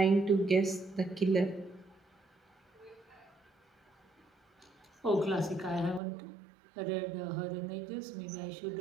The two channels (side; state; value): left; drops out; at 6.0 s